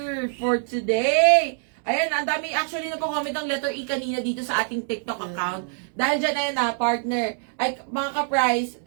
for today. Ayan, ang dami actually nagko-comment ng letter E kanina dito sa ating TikTok account. Dahil dyan, ayan na, partner. Ay, mga ka-price,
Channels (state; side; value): silent; left; 61 dB below the other